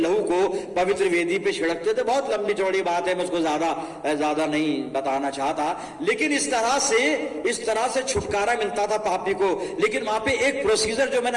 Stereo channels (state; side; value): identical; both; correlation 1.00